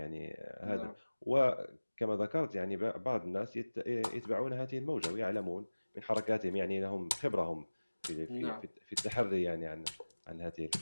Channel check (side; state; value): both; inverted; correlation -1.00